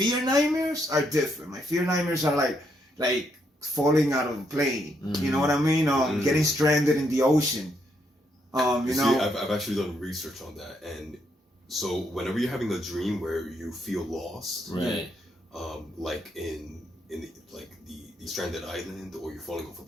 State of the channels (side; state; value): both; normal; correlation 0.76